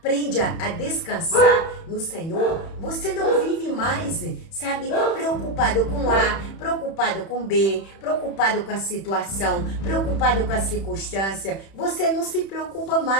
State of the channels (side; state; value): right; late; 31 ms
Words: a descansar no Senhor, você não vive mais, sabe, preocupado com A, preocupado com B, preocupado com a situação, preocupado com a circunstância. Você não se preocupa